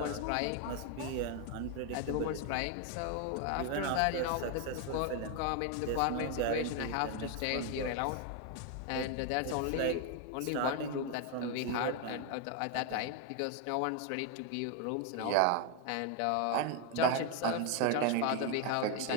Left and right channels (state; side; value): different; both; correlation 0.01